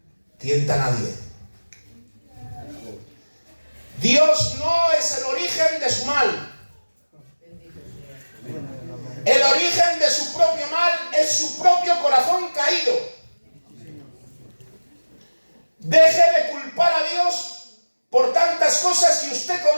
tienta a nadie. Dios no es el origen de su mal. El origen de su propio mal es su propio corazón caído. Deje de culpar a Dios por tantas cosas que usted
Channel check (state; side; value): inverted; both; correlation -1.00